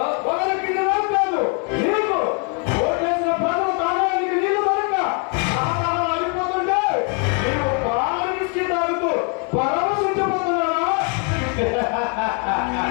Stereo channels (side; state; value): right; quieter; 38.4 dB